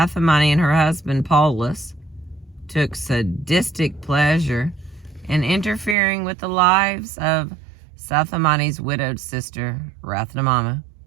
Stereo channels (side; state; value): left; drops out; at 6.0 s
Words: and her husband, Paulus, took sadistic pleasure in interfering with the lives of Sathamani's widowed sister, Rathnamama,